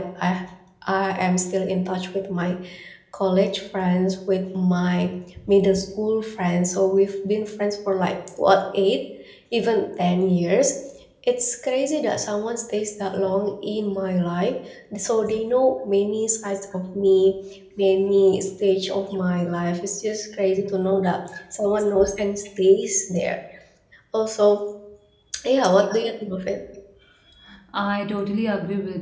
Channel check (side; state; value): both; identical; correlation 1.00